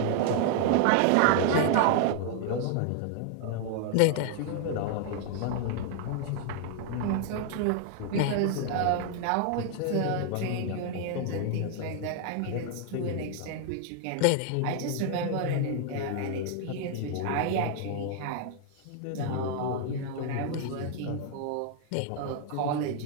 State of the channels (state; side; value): different; both; correlation 0.00